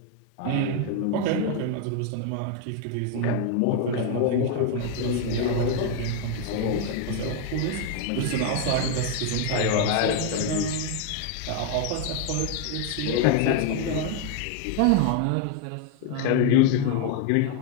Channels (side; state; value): both; different; correlation 0.01